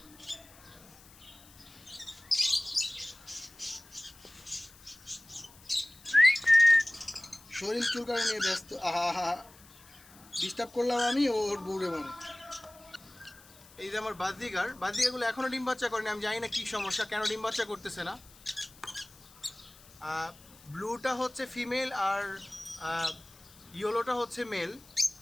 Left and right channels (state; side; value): noise; left; hiss, 23 dB below the sound